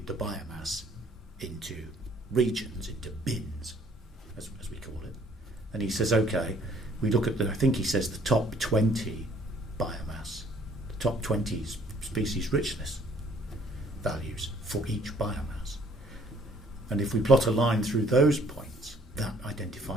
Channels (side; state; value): both; normal; correlation 0.60